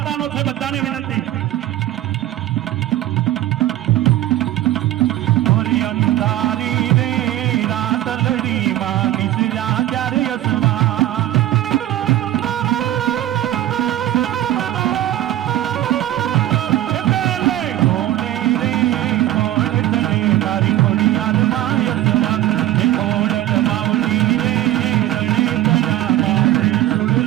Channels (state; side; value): quieter; left; 14.0 dB